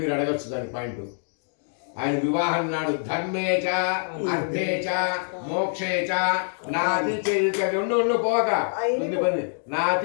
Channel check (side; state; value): right; silent; digital silence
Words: అడగచ్చు దాని పాయింట్ ఆయన వివాహం నాడు ధర్మేచ అర్థేచ మోక్షేచ నాతి ఉండు పోక